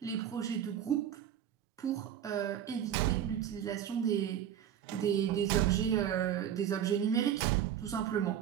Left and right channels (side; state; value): left; quieter; 9.9 dB